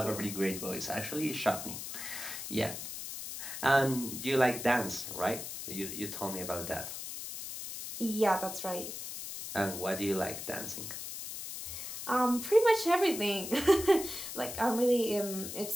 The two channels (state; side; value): noise; left; hiss, 8 dB below the sound